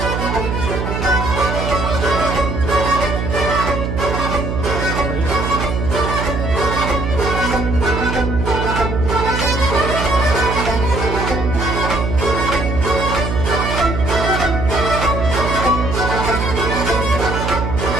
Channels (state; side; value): noise; right; hum, 2 dB below the sound